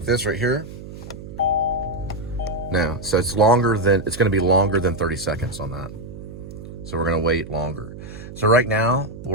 this right here. Now, so it's going to be longer than 30 seconds on that. So we're going to wait longer. So right now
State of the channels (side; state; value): right; noise; hum, 13 dB below the sound